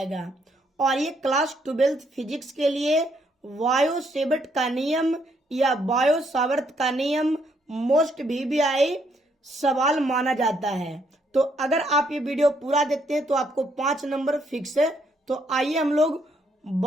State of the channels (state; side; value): normal; both; correlation 0.72